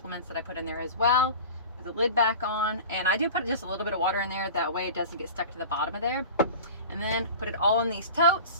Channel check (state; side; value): inverted; both; correlation -0.35